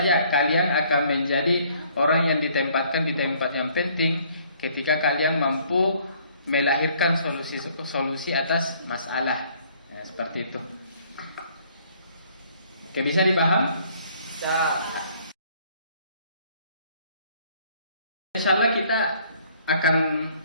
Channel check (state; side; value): inverted; both; correlation -0.61